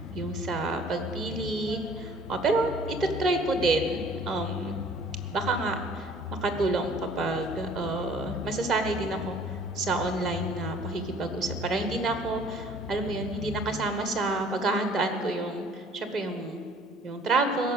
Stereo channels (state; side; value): normal; both; correlation 0.53